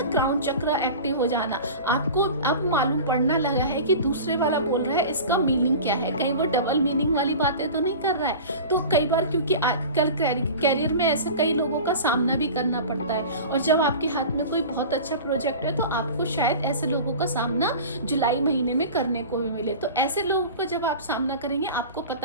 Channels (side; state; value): both; inverted; correlation -0.35